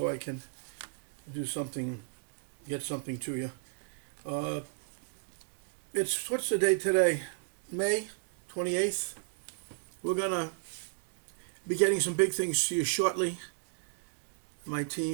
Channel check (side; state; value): left; silent; digital silence